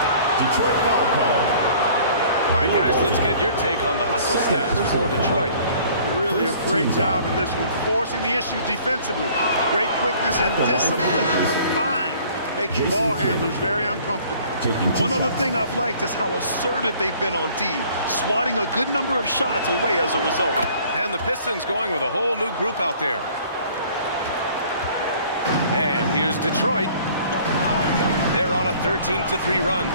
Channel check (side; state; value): both; inverted; correlation -0.53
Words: Detroit foul call. All right, guys, let's get your take on the hustle stats for Detroit. Really a great job in this one, forcing the issue defensively. Great quickness and discipline combined, making ball handlers very uncomfortable. One other thing I've liked is how assertive they've been on D, swatting a good number of shots away as a result. And the Pistons going with a whole new group out there. And here's Detroit. They're on a 13-3 run.